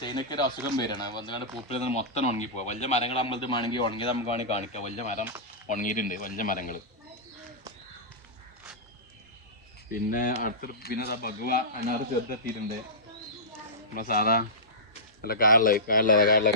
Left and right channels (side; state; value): both; normal; correlation -0.17